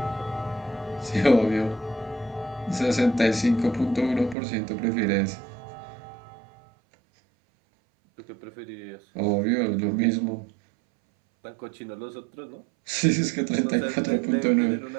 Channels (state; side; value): drops out; left; at 4.4 s